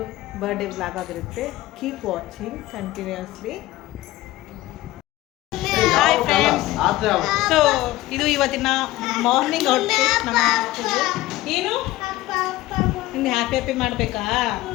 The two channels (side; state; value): right; quieter; 17.1 dB